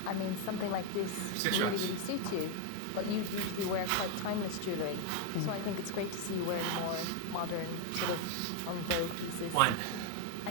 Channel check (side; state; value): both; different; correlation 0.01